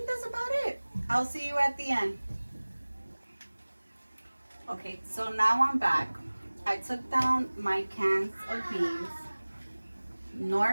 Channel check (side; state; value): both; inverted; correlation -1.00